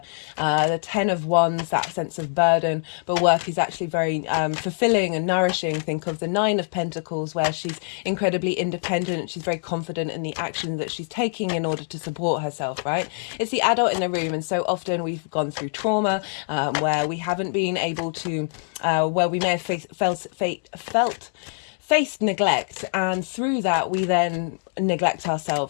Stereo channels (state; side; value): silent; right; digital silence